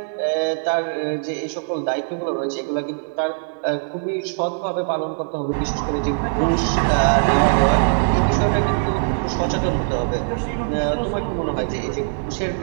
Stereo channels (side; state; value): left; silent; digital silence